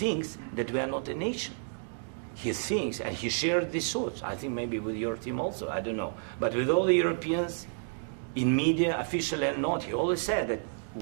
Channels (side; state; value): left; silent; digital silence